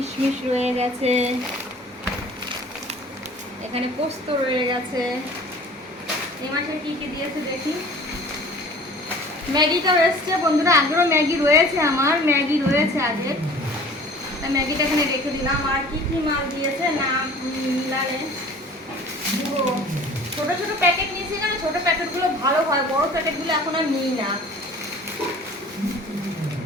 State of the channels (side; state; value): both; normal; correlation 0.46